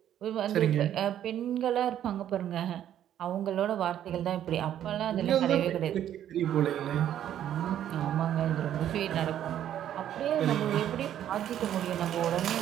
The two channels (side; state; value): left; quieter; 10.9 dB